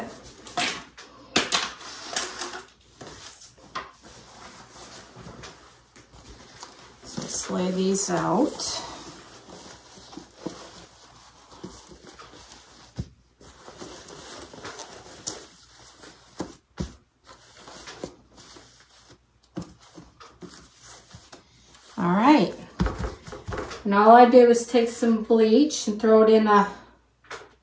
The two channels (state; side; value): identical; both; correlation 1.00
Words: Lay these out. All right. And all I did was take some bleach and throw it in a